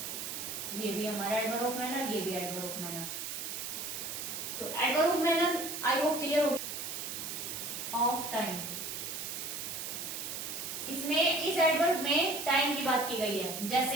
ये भी हमारा एडवर्ब ऑफ मैनर, ये भी एडवर्ब ऑफ मैनर। तो adverb of manner I hope clear हो। ऑफ टाइम, इसमें इस एडवर्ब में टाइम की बात की गई है,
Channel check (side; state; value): right; noise; hiss, 5 dB below the sound